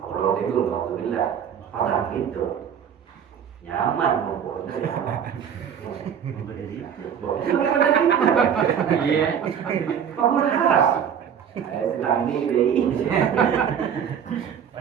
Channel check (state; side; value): quieter; left; 8.2 dB